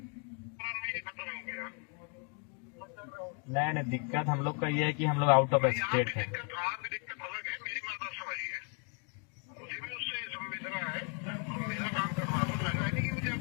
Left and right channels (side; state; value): right; quieter; 36.1 dB